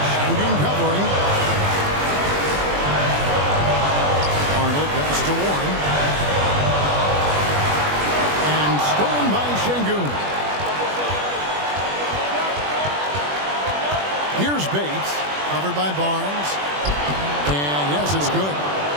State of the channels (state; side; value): late; left; 21 ms